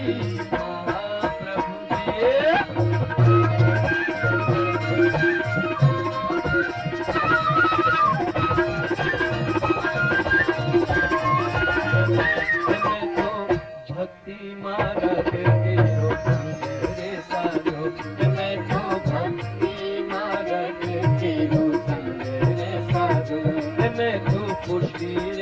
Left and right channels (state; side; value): identical; both; correlation 1.00